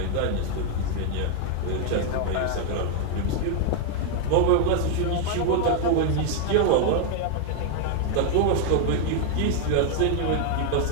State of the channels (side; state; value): both; different; correlation 0.00